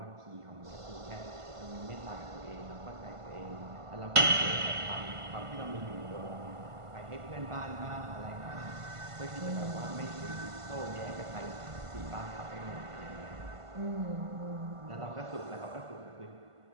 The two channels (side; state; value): left; late; 1.5 ms